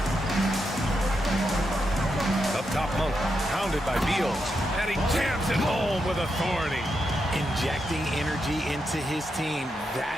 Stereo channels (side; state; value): both; normal; correlation 0.84